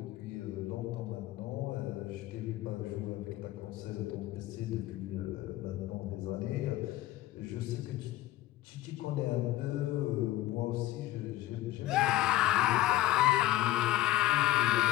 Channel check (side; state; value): right; quieter; 15.6 dB